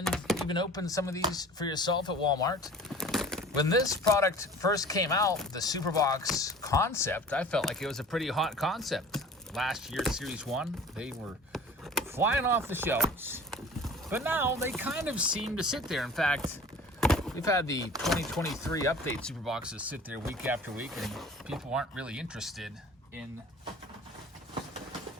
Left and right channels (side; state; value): both; normal; correlation 0.43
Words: even opened some of these for yourself at Walmart. When this product first came out, the super box concept, I felt like it was a pretty hot concept. Last year, Series 1, they were flying off the shelves. But now they kind of seem to sit there. In fact, we've had the 2023 update super boxes sit there week after week, and people aren't really interested in